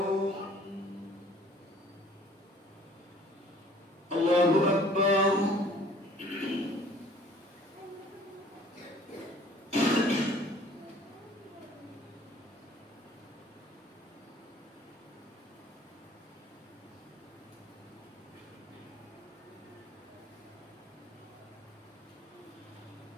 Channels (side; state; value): both; normal; correlation 0.53